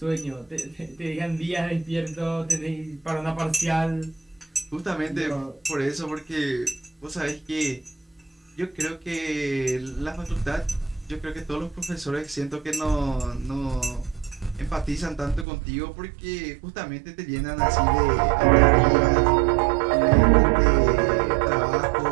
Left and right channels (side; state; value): left; drops out; at 15.5 s